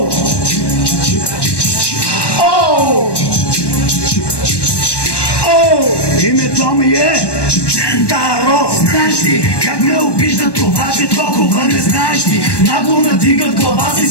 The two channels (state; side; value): late; right; 1.2 ms